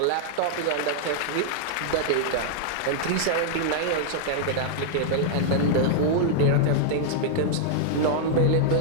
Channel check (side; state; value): both; different; correlation -0.01